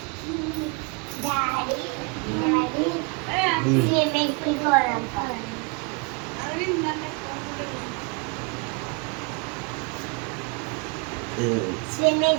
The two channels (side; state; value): left; quieter; 31.1 dB